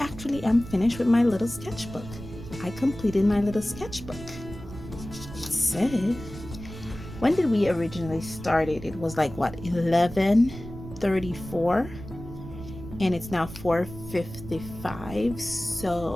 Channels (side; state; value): right; noise; rumble, 13 dB below the sound